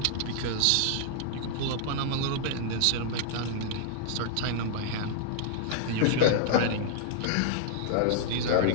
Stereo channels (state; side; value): different; both; correlation -0.01